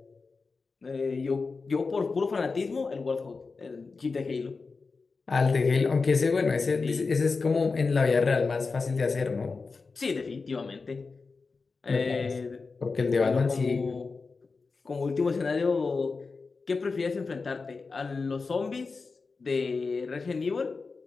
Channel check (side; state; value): right; quieter; 4.4 dB